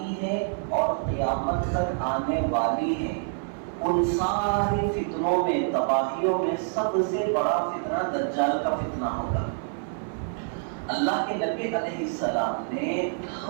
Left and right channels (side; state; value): left; silent; 60 dB below the other